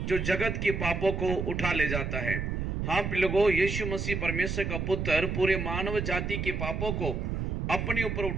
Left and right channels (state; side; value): noise; right; rumble, 2 dB below the sound